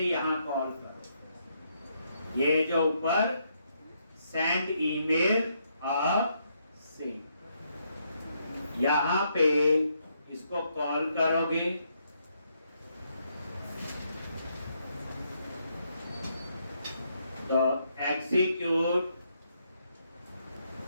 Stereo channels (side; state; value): both; inverted; correlation -0.76